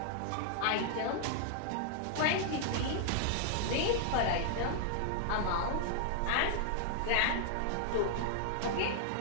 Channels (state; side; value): different; both; correlation -0.01